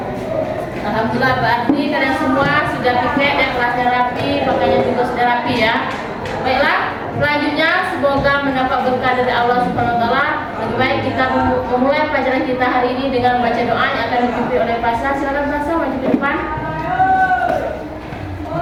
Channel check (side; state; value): both; identical; correlation 1.00